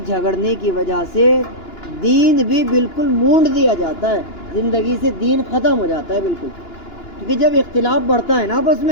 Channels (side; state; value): right; late; 2.9 ms